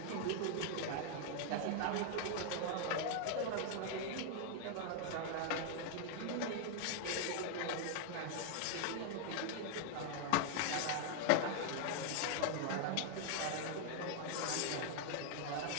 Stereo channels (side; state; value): both; different; correlation 0.00